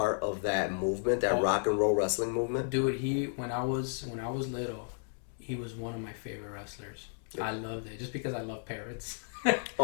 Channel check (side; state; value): right; silent; digital silence